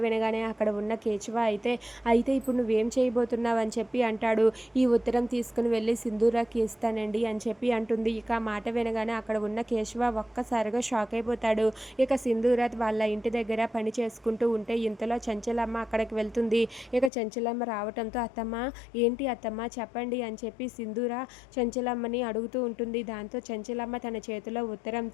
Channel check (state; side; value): drops out; right; at 17.1 s